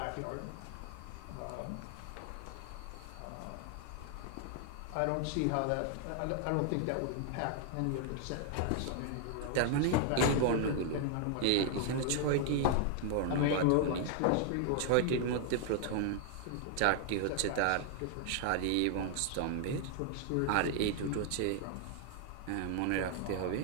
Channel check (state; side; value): different; both; correlation 0.00